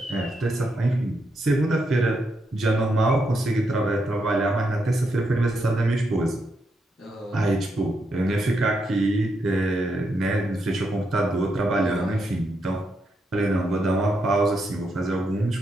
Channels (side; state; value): both; normal; correlation 0.81